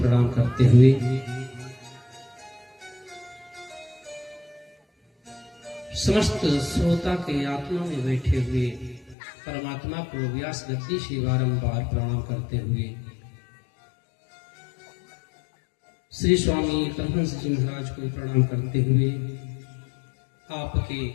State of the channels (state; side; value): drops out; right; at 9.2 s